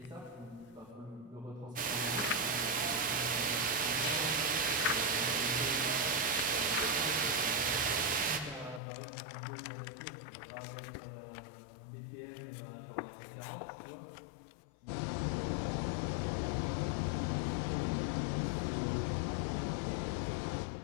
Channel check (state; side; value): drops out; right; at 8.8 s